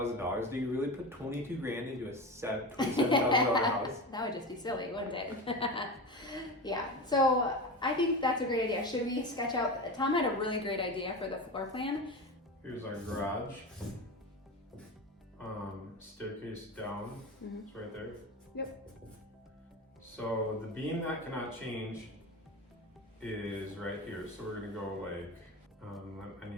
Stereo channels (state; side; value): normal; both; correlation 0.25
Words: Do you really put 22 grand into a $27,000 house? That would just be silly, wouldn't it? Yeah. So I think that's a great idea. Should we sketch out? Tom had a really great idea for the floor plan. Here's our garage. Staircase down. Mhm. It's right there. Yep. So the beam that cannot change is right here. So we're gonna go like, I